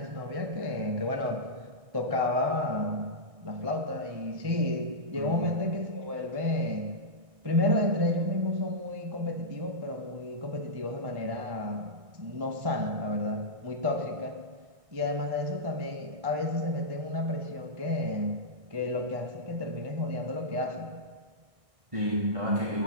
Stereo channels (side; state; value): left; late; 1.6 ms